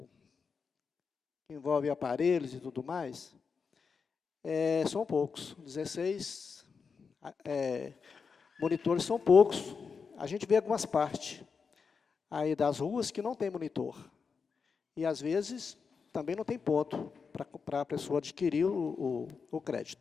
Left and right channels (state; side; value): quieter; right; 5.5 dB